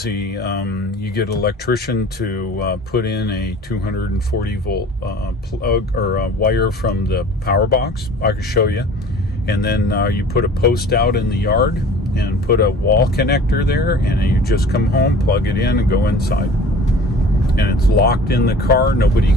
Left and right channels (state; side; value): normal; both; correlation 0.44